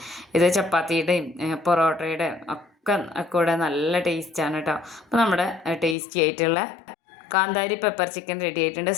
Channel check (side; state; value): right; drops out; at 6.0 s